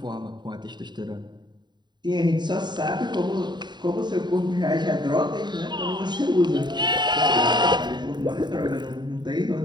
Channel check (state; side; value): late; left; 0.21 ms